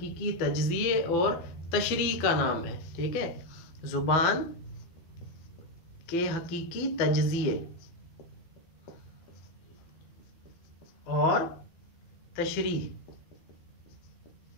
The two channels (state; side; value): late; right; 13 ms